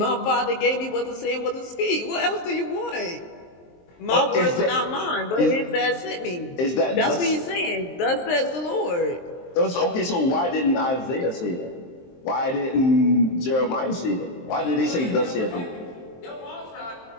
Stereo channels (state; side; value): late; right; 23 ms